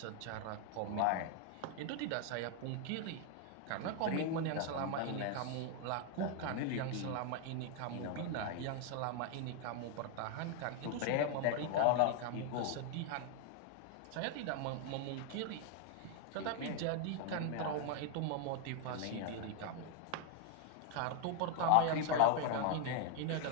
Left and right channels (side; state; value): both; different; correlation 0.00